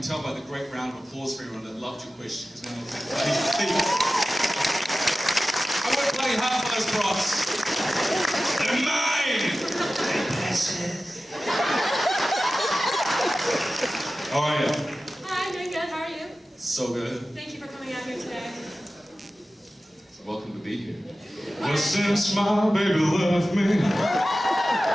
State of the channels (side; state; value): both; normal; correlation 0.95